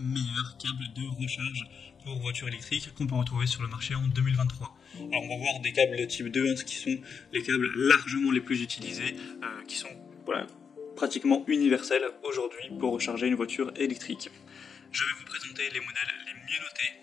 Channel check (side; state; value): right; quieter; 6.3 dB